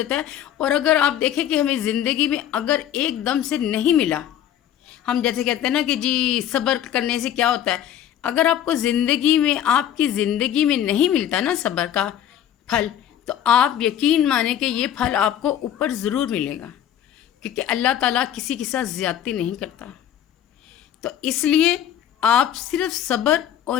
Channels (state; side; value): quieter; right; 10.6 dB